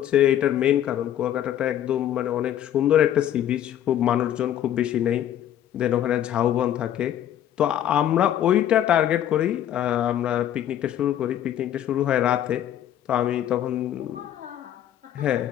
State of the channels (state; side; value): quieter; right; 11.1 dB